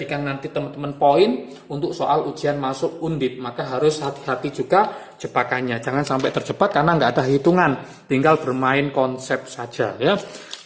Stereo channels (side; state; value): both; identical; correlation 1.00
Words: nanti teman-teman poin untuk soal ujian masuk Undip. Maka harus hati-hati juga jebakannya. Jangan sampai terjebak karena nggak ada hitungan. Tinggal bermain konsep saja ya.